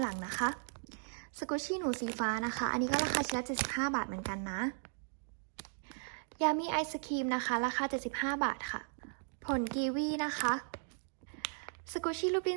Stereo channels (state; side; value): silent; left; digital silence